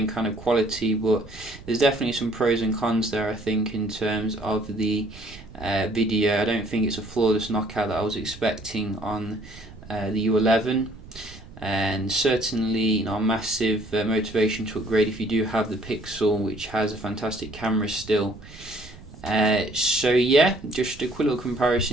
kind of quality, but there's definitely some pros and cons there, I think, in terms of the video. I don't think it's a flawless knockout that I was expecting on the U11. And certainly, you know, a massive motivation to upgrade if you do have the Pixel, which has a fantastic camera still. So yeah, just a quick little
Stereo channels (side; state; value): right; noise; rumble, 18 dB below the sound